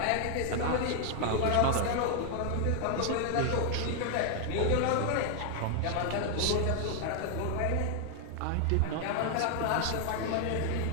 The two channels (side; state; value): both; different; correlation 0.00